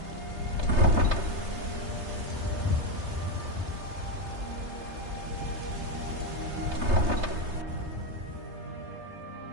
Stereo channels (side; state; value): left; late; 3.3 ms